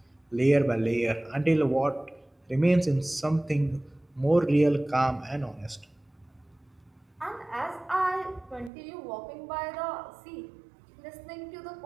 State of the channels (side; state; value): left; drops out; at 8.7 s